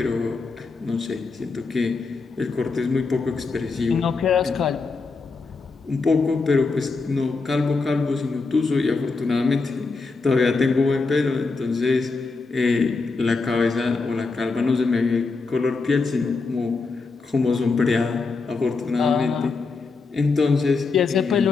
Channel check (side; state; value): right; quieter; 4.2 dB